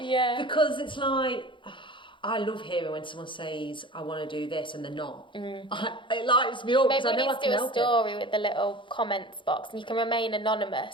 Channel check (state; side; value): late; right; 0.24 ms